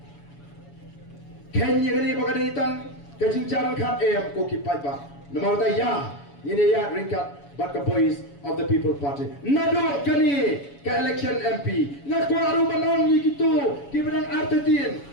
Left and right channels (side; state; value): right; late; 7.1 ms